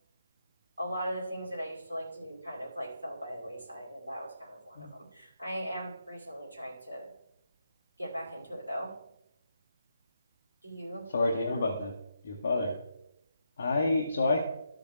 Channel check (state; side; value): inverted; both; correlation -0.82